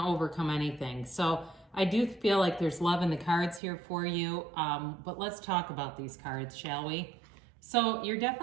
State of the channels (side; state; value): left; drops out; at 3.6 s